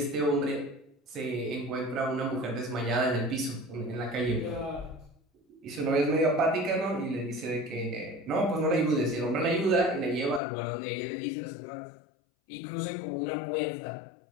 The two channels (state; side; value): drops out; right; at 10.4 s